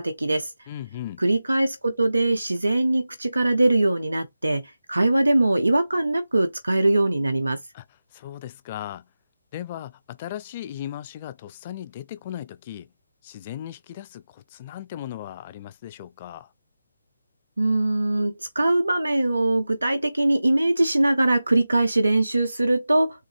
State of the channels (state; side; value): inverted; both; correlation -0.95